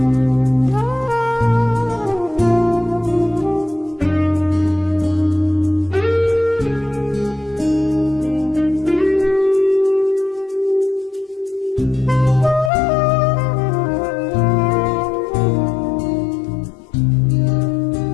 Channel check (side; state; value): right; drops out; at 12.7 s